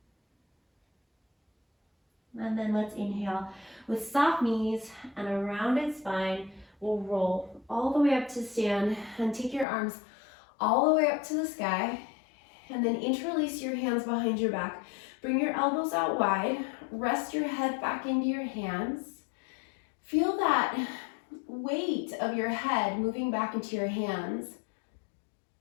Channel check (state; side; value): drops out; right; at 9.7 s